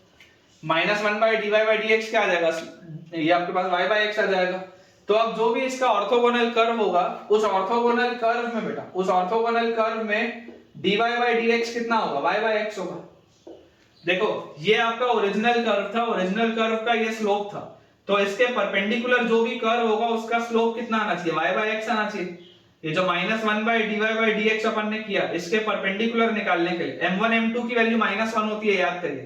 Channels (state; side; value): identical; both; correlation 1.00